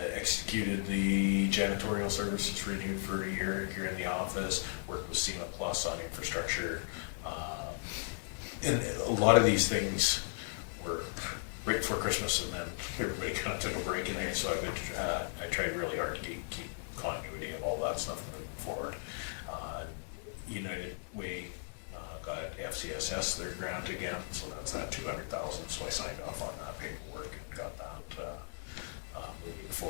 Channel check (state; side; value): silent; right; 54 dB below the other